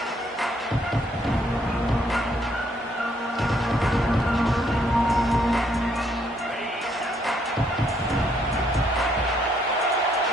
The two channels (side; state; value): both; normal; correlation 0.70